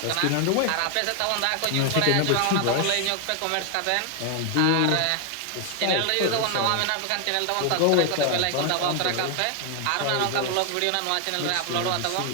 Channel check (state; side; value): different; both; correlation 0.00